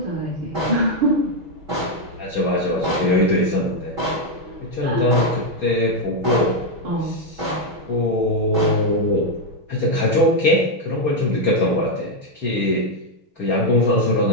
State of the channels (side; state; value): left; late; 6.4 ms